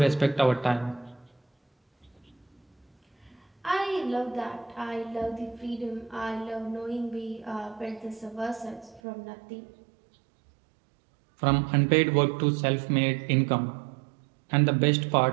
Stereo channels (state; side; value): drops out; left; at 9.0 s